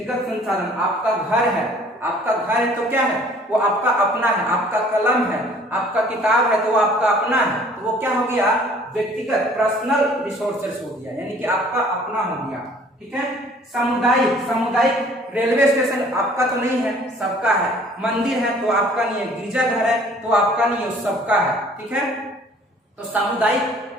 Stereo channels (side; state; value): both; normal; correlation 0.54